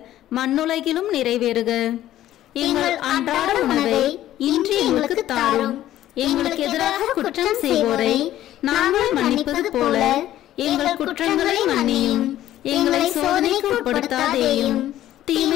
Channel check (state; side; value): quieter; right; 13.2 dB